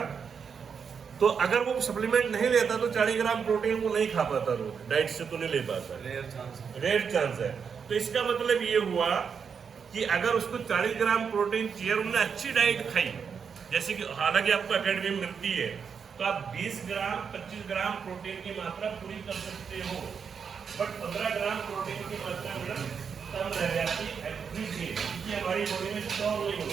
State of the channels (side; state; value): left; quieter; 6.5 dB